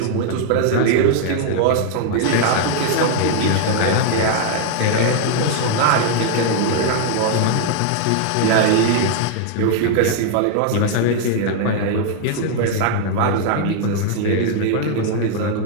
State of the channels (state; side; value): different; both; correlation 0.00